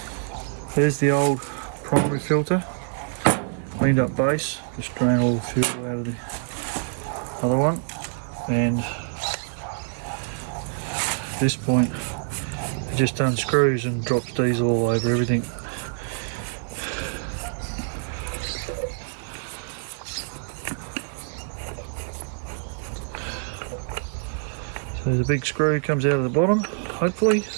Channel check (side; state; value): left; silent; 59 dB below the other